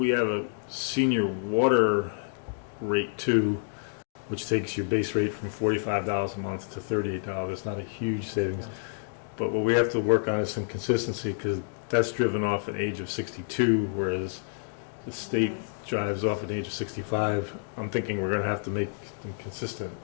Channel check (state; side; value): silent; right; digital silence